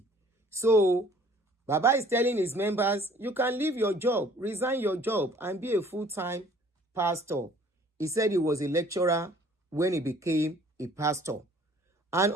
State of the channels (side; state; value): both; normal; correlation 0.55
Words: So, Baba is telling his members, you can leave your job, resign your job, and be a full-time pastor. He said he was a lecturer when he became a pastor. And